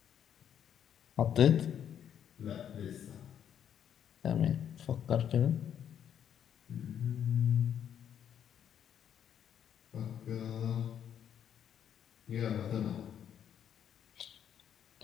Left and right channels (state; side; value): quieter; right; 9.2 dB